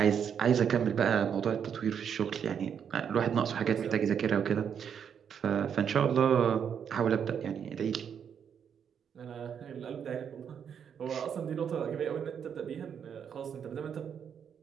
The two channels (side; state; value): left; quieter; 7.8 dB